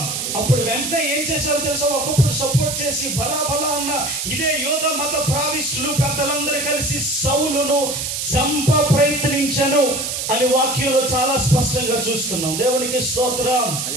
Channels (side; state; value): right; noise; hiss, 3 dB below the sound